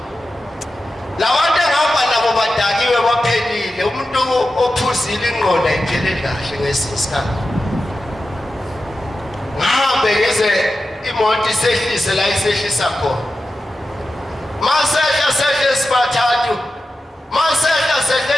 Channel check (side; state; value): both; normal; correlation 0.92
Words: Labantu engihamba nabo badakiwe baphelile. Umuntu ophuzile ingqondo ayipheleli kahle ngesinye isikhathi. Ngihambe ngeze imoto isehlise la isehlisa khona. Masehla sibathathu. Masehla